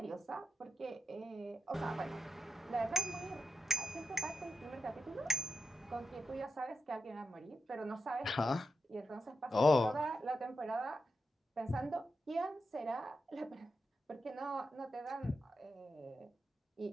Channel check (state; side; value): normal; both; correlation 0.87